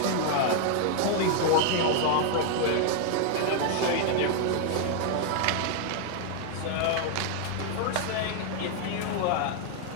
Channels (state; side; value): different; both; correlation 0.00